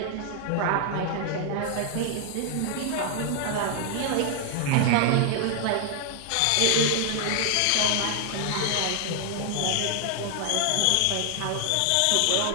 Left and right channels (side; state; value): both; different; correlation 0.00